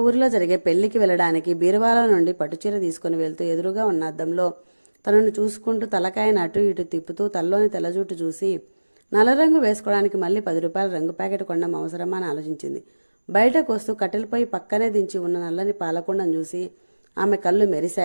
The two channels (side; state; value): both; inverted; correlation -1.00